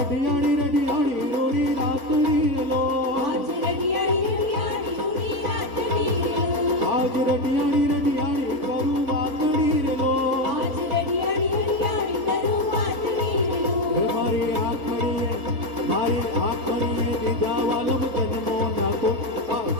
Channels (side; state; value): left; late; 3.9 ms